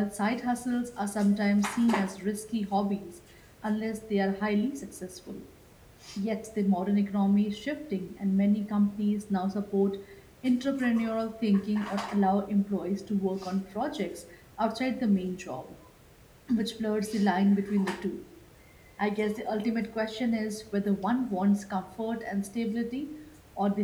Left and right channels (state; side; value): identical; both; correlation 1.00